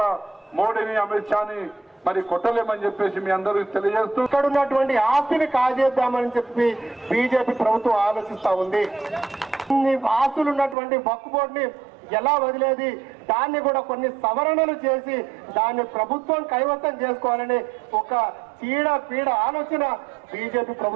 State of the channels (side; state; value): left; drops out; at 10.8 s